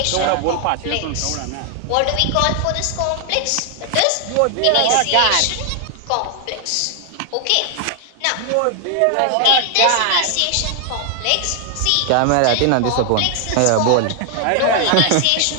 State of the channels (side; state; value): both; different; correlation 0.00